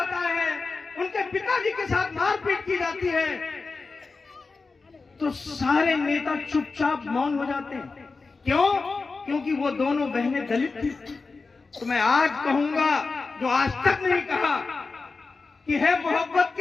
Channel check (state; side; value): quieter; right; 4.1 dB